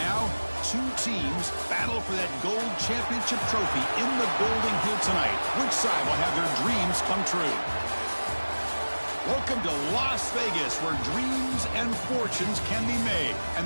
two teams battle for that gold championship trophy in the building here tonight. Which side will have their dreams come true? Welcome to Las Vegas, where dreams and fortunes can be made,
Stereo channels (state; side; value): inverted; both; correlation -1.00